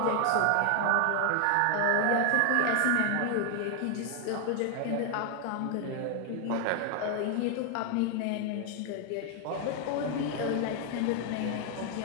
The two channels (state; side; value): different; both; correlation 0.00